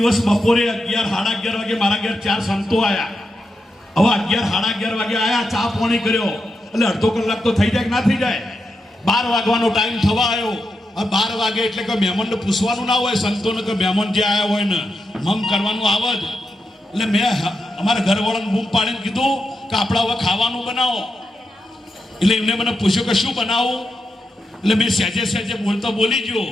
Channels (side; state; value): both; normal; correlation 0.86